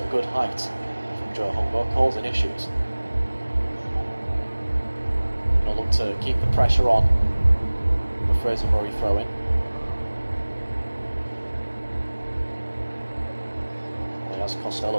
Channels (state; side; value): inverted; both; correlation -1.00